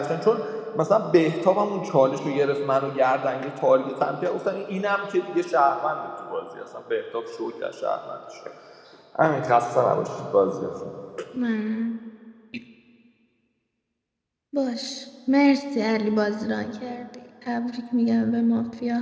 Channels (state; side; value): identical; both; correlation 1.00